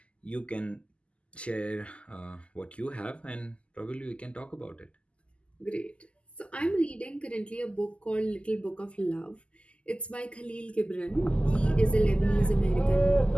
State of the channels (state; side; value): late; right; 0.055 ms